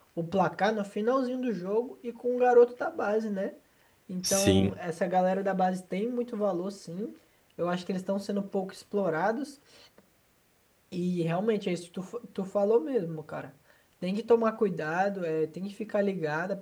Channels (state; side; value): identical; both; correlation 1.00